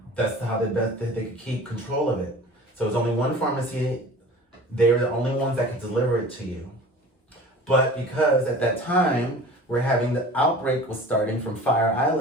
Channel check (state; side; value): normal; both; correlation 0.40